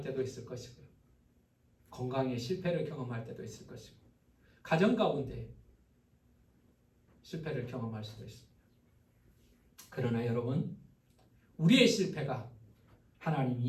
때도 있을 것이고요. 건강의 실패를 경험할 때도 있을 것이고 가정 가운데 실패를 경험할 수도 있습니다. 그러나 여러분 우리의 실패가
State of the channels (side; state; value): both; identical; correlation 1.00